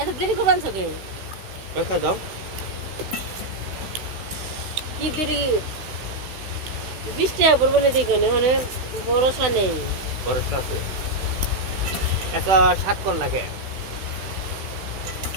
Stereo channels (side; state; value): left; late; 16 ms